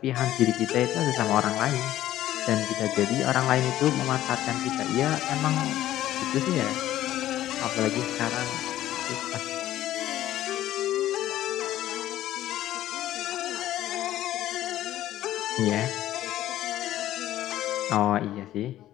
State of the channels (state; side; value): quieter; right; 13.6 dB